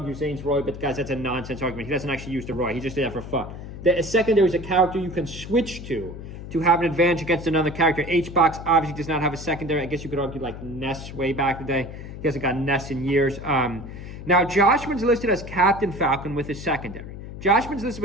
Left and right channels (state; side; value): noise; left; hum, 11 dB below the sound